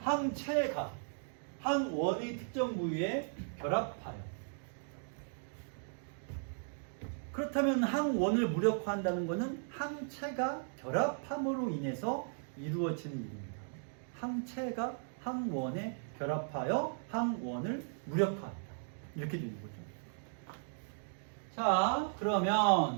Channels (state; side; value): silent; left; digital silence